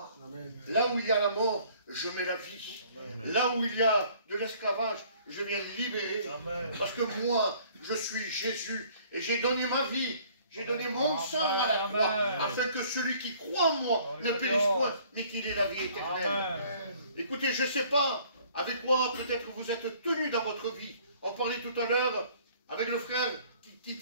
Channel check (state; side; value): inverted; both; correlation -0.57